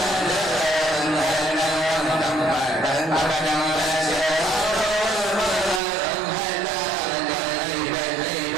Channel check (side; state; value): left; drops out; at 5.8 s